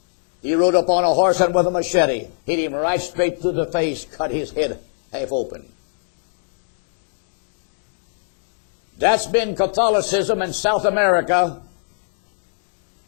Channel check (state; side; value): silent; right; digital silence